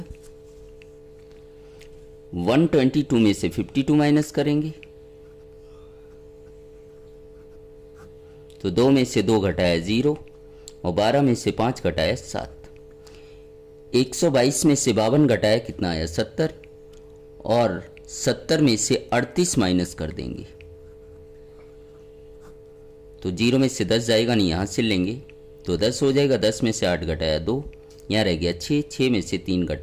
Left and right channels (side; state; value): both; identical; correlation 1.00